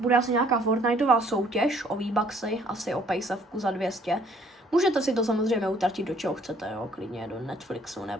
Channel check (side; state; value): both; normal; correlation 0.61